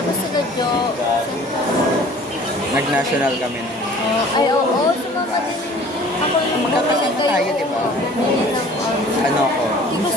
sila Jo, Nag-national kami. ay, oo, sumama din ako nung Magkakasama tayo, diba? Bumili ng, Ano ko? hindi ko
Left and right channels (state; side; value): normal; both; correlation 0.48